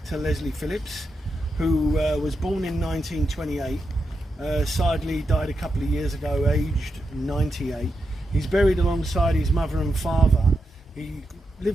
Leslie Phillips, who was born in 1928. Sadly died a couple of years ago, aged 98. He's buried alongside his mother and father. He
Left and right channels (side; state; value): both; normal; correlation 0.86